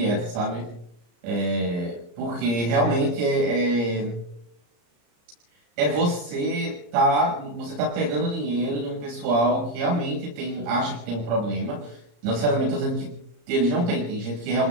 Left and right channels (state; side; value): late; left; 34 ms